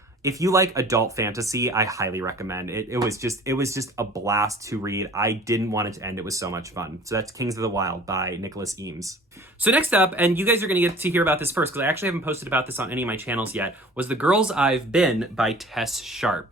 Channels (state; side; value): normal; both; correlation 0.46